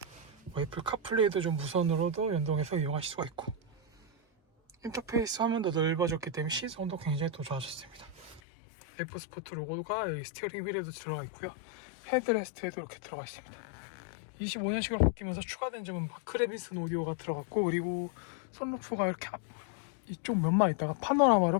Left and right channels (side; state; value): right; drops out; at 8.4 s